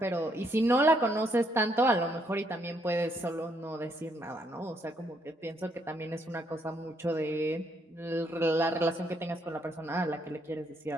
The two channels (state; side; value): normal; both; correlation 0.72